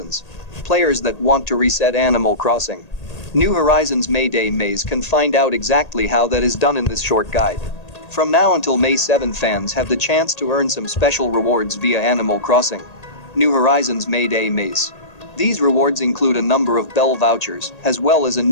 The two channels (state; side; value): late; right; 1.8 ms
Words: Players that want to reset Animal Crossing New Horizons Mayday maze can find out exactly how that is done in this short guide. From now until May 7, fans have the chance to earn some special rewards via Animal Crossing New Horizons Mayday maze. These rewards include a number of bell vouchers, as well as a